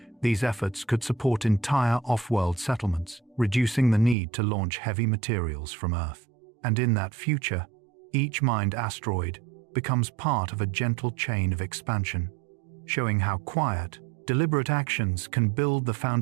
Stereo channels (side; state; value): left; drops out; at 4.2 s